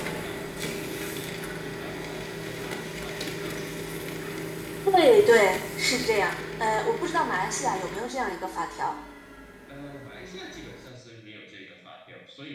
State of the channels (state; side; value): identical; both; correlation 1.00